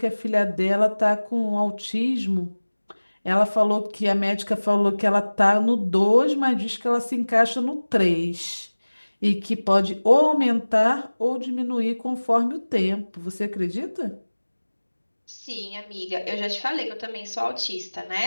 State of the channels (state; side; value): inverted; both; correlation -1.00